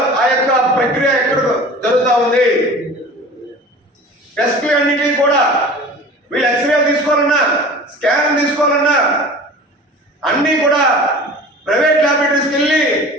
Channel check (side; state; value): both; normal; correlation 0.40